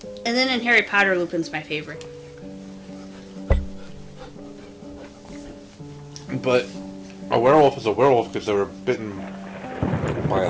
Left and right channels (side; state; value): both; identical; correlation 1.00